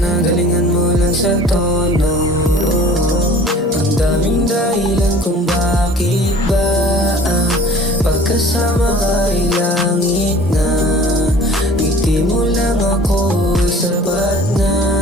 galingan mo lang sa tono. Ang daming dahilan kung bakit ba pagkasama ka ay langit na. Ngiti mo lang ako ay sapat na,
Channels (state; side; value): normal; both; correlation 0.47